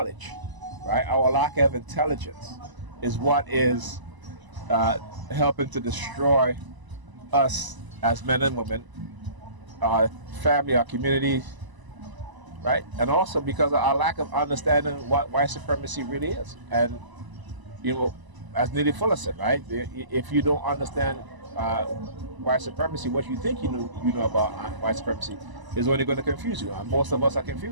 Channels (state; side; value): late; left; 1.0 ms